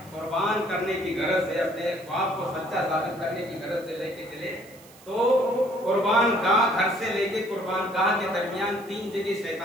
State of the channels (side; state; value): right; noise; hiss, 23 dB below the sound